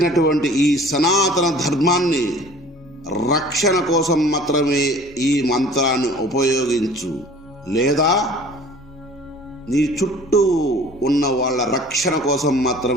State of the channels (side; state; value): both; normal; correlation 0.48